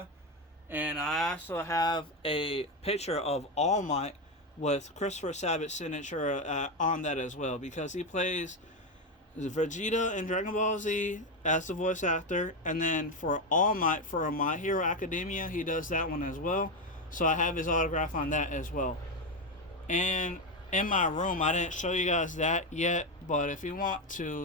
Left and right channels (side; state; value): both; normal; correlation 0.11